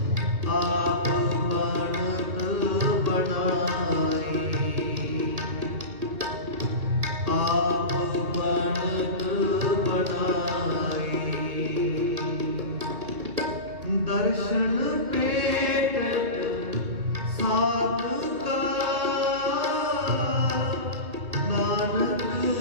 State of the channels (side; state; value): left; late; 2.0 ms